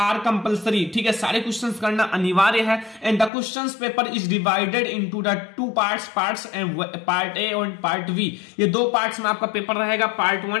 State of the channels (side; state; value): right; drops out; at 3.3 s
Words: compulsory. ठीक है, सारे क्वेश्चंस करना अनिवार्य है। And the questions paper is divided into the 2 parts and part A और पार्ट वी। ये 2 पार्ट्स में आपका पेपर रहेगा, पार्ट